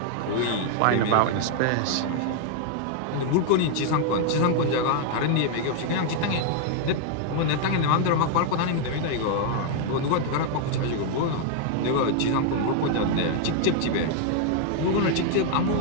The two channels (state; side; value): different; both; correlation 0.00